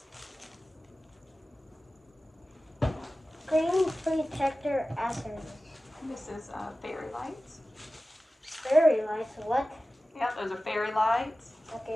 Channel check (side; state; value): both; normal; correlation 0.96